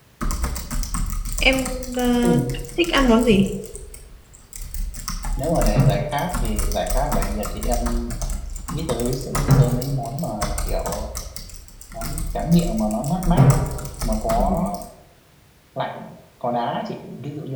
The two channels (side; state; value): both; identical; correlation 1.00